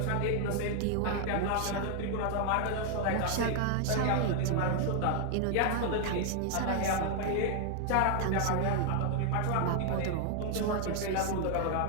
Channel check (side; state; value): both; different; correlation 0.00